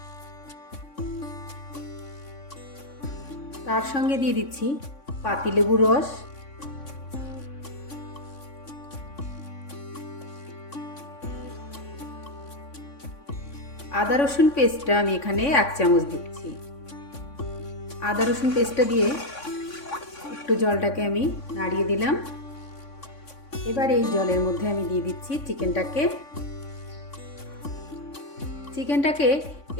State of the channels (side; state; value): right; late; 3.6 ms